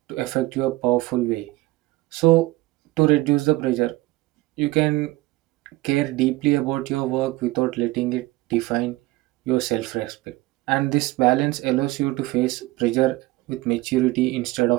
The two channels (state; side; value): quieter; left; 19.4 dB